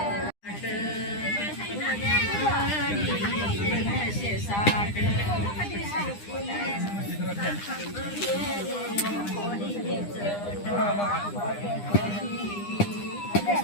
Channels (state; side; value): late; right; 9.9 ms